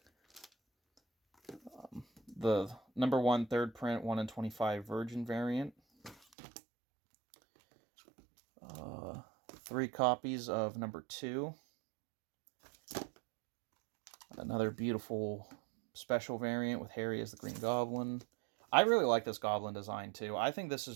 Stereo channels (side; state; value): left; drops out; at 6.2 s